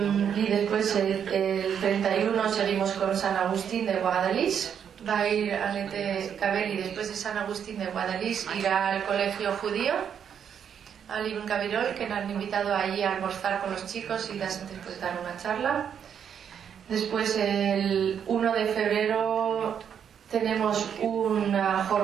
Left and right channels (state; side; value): quieter; left; 8.1 dB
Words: después el 31 seguimos con San Agustín de Guadalís. Va a ir Annette Cabelli después de San Agustín de Guadalís, irá al colegio judío, al Ibn Gabirol, que nos han invitado allí a almorzar con los chicos y después dar una charla. Después el 1 de febrero tenemos una